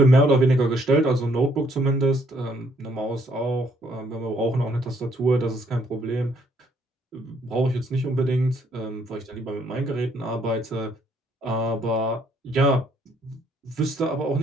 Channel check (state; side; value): normal; both; correlation 0.68